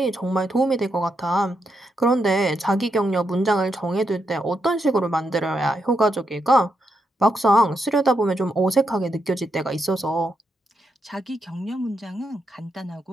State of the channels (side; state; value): both; normal; correlation 0.82